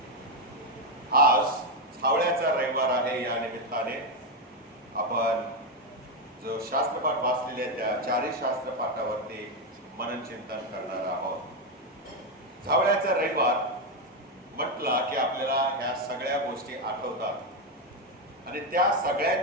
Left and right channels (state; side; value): normal; both; correlation 0.07